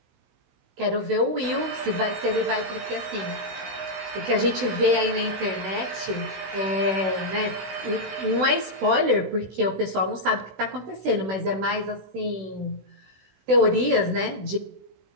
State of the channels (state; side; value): late; left; 16 ms